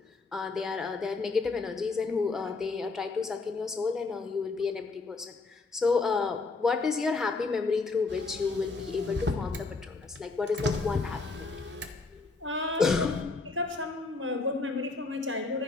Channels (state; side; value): quieter; right; 3.9 dB